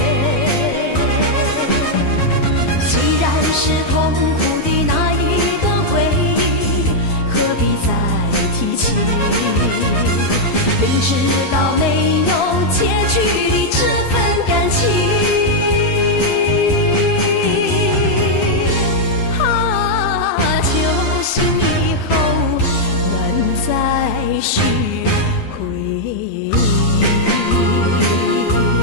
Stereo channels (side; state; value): right; late; 7.0 ms